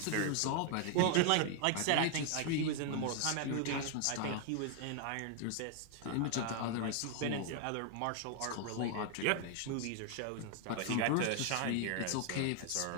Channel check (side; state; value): both; different; correlation 0.00